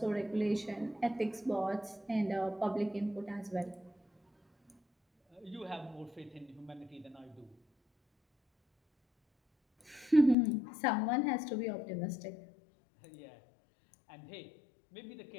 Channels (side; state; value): right; drops out; at 10.4 s